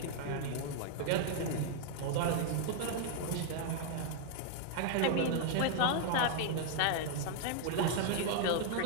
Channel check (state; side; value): different; both; correlation 0.00